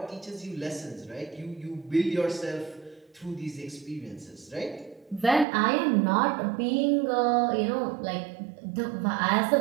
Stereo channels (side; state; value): left; drops out; at 5.5 s